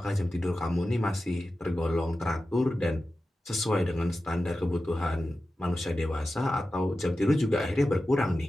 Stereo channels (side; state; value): both; normal; correlation 0.93